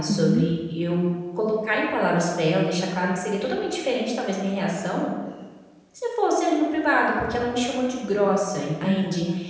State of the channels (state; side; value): identical; both; correlation 1.00